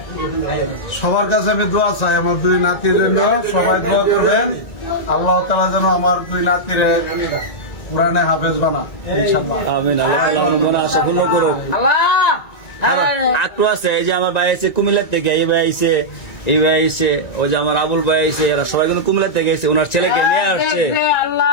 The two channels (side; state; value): right; late; 1.9 ms